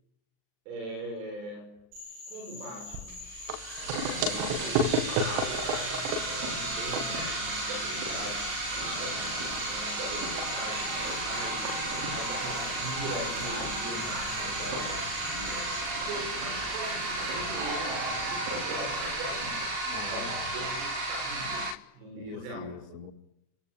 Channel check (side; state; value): left; late; 39 ms